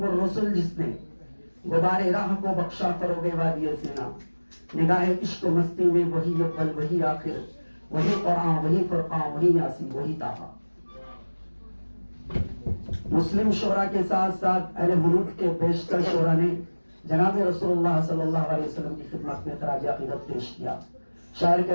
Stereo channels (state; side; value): inverted; both; correlation -1.00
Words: الرسل جس نے غبار راہ کو بخشا فروغ وادی سینا، نگاہ عشق و مستی میں وہی اول وہی آخر، وہی قرآن وہی فرقان وہی یاسین وہی طٰہٰ۔ مسلم شعراء کے ساتھ ساتھ اہل حنوف کے بیشتر شعراء نے جناب رسول اللہ صلی اللہ علیہ وسلم کی خدمت میں خراج عقیدت پیش کیا۔ شاعر